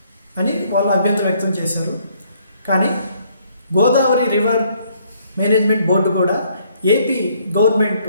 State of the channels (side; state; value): both; inverted; correlation -0.66